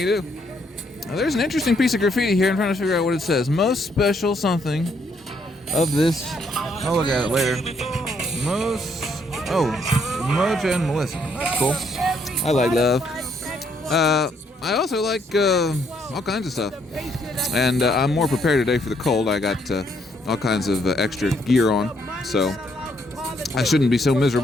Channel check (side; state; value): both; normal; correlation 0.71